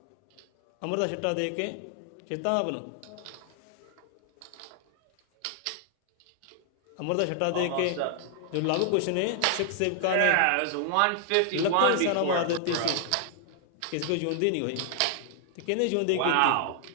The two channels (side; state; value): both; different; correlation 0.00